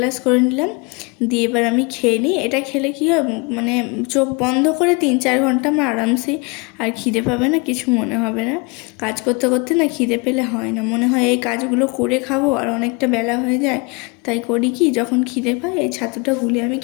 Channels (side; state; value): right; quieter; 29.4 dB